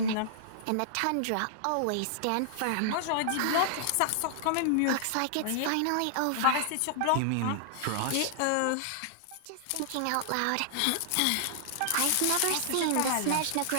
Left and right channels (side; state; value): both; different; correlation -0.01